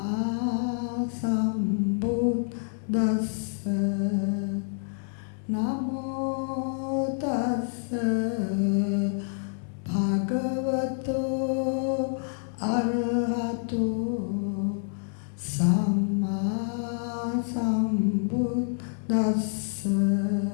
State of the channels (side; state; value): right; silent; digital silence